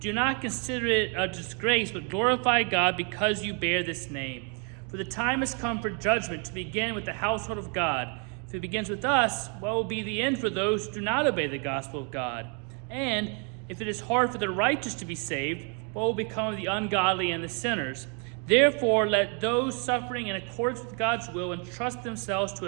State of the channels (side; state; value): left; quieter; 38.0 dB